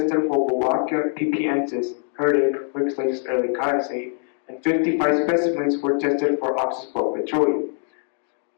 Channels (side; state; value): right; silent; 56 dB below the other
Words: for Wolbachia pipiensis, Herdic, Wixlake's early codicea, and 55 specimens were tested for Oxyspirura petrowi,